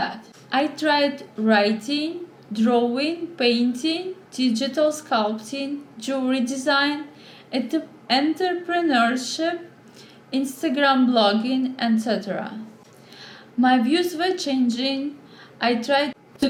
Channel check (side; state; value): both; identical; correlation 1.00